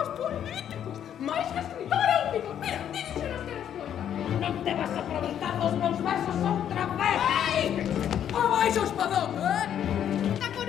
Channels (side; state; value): right; quieter; 9.7 dB